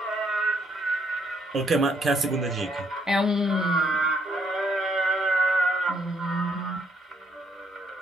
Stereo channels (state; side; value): normal; both; correlation 0.70